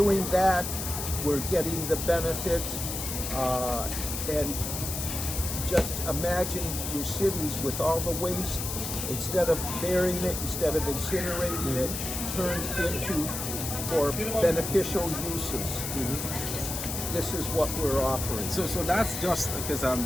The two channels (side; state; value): left; noise; hiss, 4 dB below the sound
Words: that, we're getting the benefits, and just imagine your cities with all the waste, instead of burying it, instead of incinerating it, turned into for beneficial uses. This is what we're offering. So that's just because